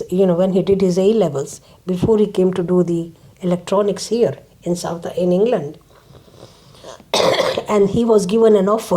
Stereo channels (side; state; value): both; identical; correlation 1.00